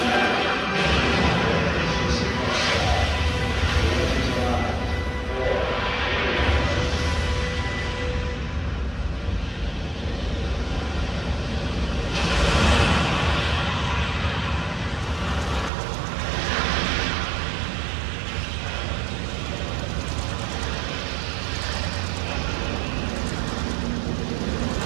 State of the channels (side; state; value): left; drops out; at 15.7 s